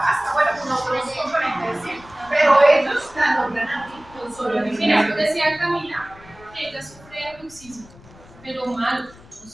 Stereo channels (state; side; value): noise; left; rumble, 23 dB below the sound